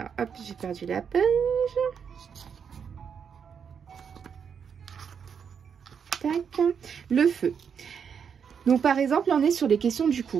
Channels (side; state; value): left; quieter; 7.0 dB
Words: hop, j'ai perdu la page. Le feu. Donc par exemple, là, on est sur les questions du